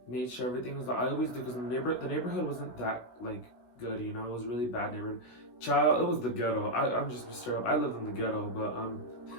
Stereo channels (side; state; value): right; late; 16 ms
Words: made sure everything was. I always do because the neighborhood wasn't that like good, it was really bad neighborhood. Child, it was the ghetto. I'm just straight up. I lived in the ghetto, but